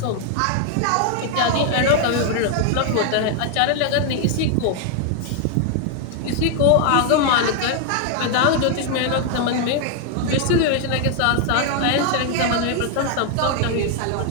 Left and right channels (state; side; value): different; both; correlation 0.00